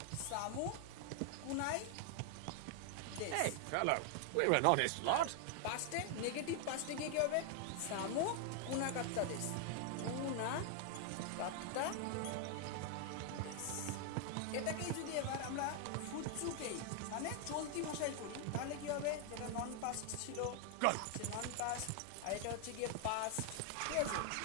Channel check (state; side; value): different; both; correlation 0.00